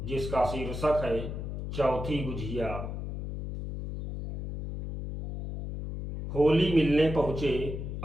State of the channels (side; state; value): left; noise; hum, 6 dB below the sound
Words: जिसका शीर्षक है चौथी गुझिया। होली मिलने पहुँचे